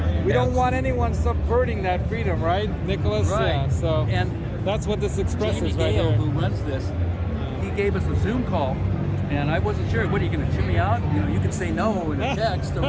We don't want anyone subverting that freedom, right, Nicholas? Right. Yeah. So, And that's what this Jamie expresses right Gale, here. who runs this, he gave us a Zoom call, and I wasn't sure. What, are you going to chew me out? You know, you could say no in a text or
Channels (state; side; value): identical; both; correlation 1.00